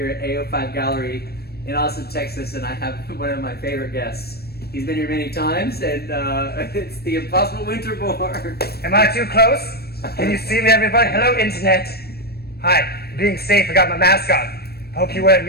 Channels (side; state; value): right; late; 0.46 ms